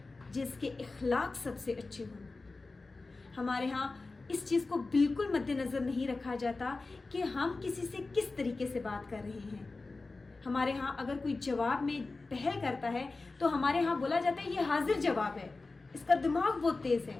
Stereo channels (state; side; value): quieter; right; 3.6 dB